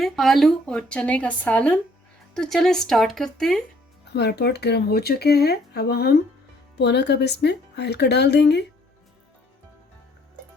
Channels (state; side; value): normal; both; correlation 0.62